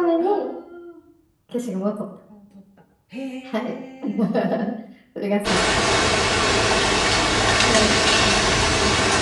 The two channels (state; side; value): identical; both; correlation 1.00